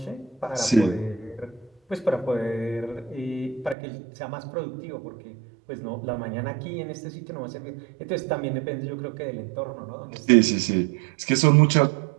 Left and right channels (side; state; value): left; drops out; at 3.8 s